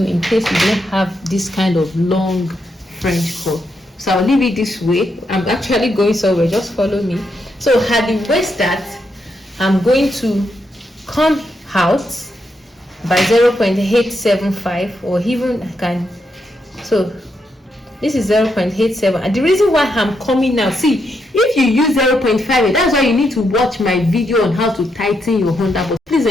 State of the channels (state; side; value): normal; both; correlation 0.81